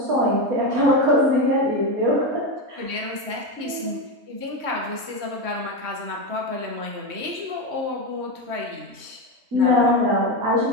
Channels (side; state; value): left; late; 3.2 ms